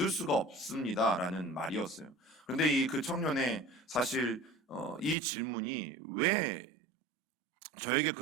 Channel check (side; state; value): left; drops out; at 5.2 s